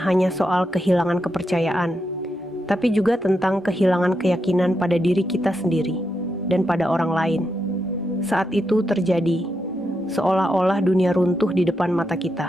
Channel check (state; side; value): normal; both; correlation 0.84